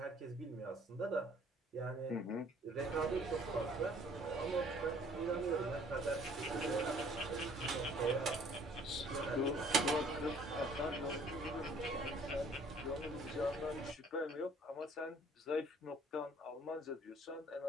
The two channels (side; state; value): both; normal; correlation 0.57